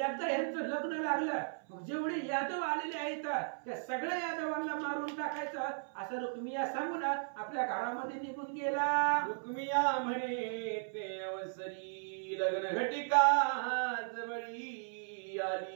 यांचं लग्न लागलं मग जेवढे यादव आलेले आहेत त्या सगळ्या यादवांना मारून टाकायचं असं रुक्मिया सांगून आपल्या घरामध्ये निघून गेला. रुक्मिया म्हणे ते अवसरी लग्न घटिका जवळी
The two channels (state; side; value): silent; left; 54 dB below the other